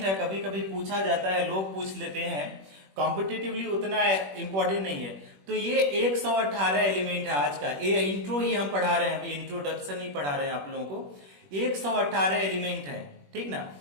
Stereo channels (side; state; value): left; late; 21 ms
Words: है, कभी कभी पूछा जाता है, लोग पूछ लेते हैं, कॉम्पिटिटिवली उतना इंपॉर्टेंट नहीं है। तो ये 118 एलिमेंट है आज का, ये इंट्रो ही हम पढ़ा रहे हैं, अभी इंट्रोडक्शन ही पढ़ा रहे हैं आप लोगों को। 118 एलिमेंट है, ठीक ना।